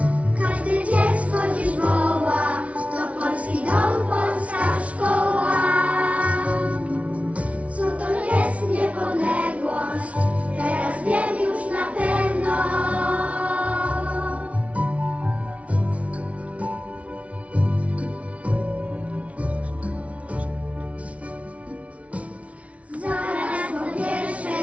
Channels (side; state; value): left; late; 0.065 ms